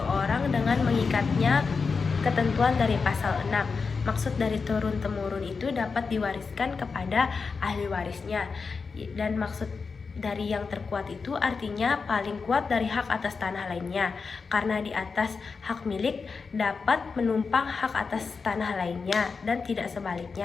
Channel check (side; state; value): right; quieter; 4.9 dB